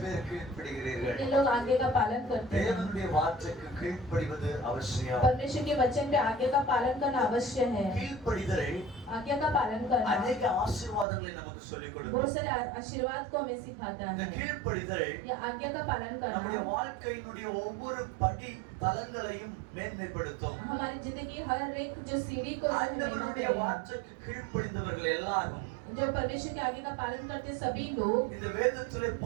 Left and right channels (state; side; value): drops out; left; at 11.1 s